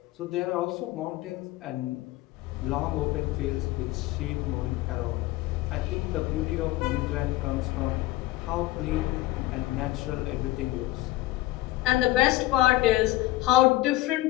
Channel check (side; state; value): right; quieter; 17.6 dB